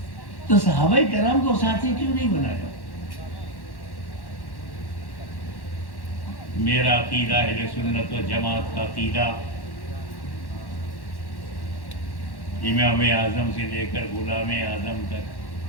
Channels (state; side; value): late; right; 1.1 ms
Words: تو صحابہ کرام کو ساتھی کیوں نہیں بنایا؟ میرا عقیدہ اہل سنت و جماعت کا عقیدہ امام اعظم سے لے کر غلام اعظم تک